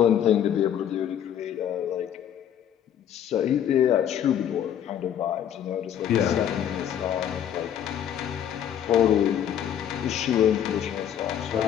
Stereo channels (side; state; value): right; quieter; 9.7 dB